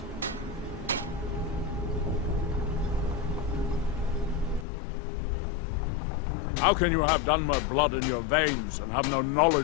How can you have Dunmer blood in your veins and have no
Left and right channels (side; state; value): right; drops out; at 4.7 s